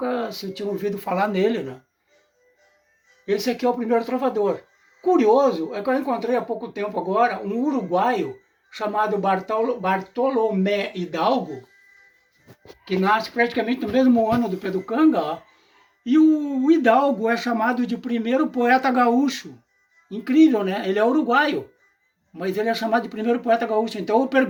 se tinha ouvido falar nele, né? Esse aqui é o primeiro trovador. Curioso é que eu encontrei há pouco tempo agora um uruguaio chamado Bartolomé Hidalgo, que nasce praticamente no mesmo ano do Pedro Canga, ó, e o Hidalgo é chamado de primeiro poeta gaúcho. Incrível, né? Ele é uruguaio, mas ele é chamado de primeiro poeta gaúcho. Então eu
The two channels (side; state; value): both; identical; correlation 1.00